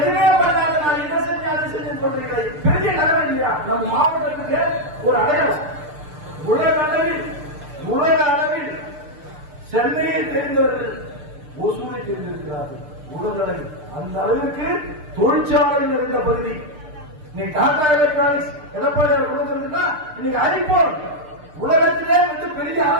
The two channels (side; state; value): left; late; 6.6 ms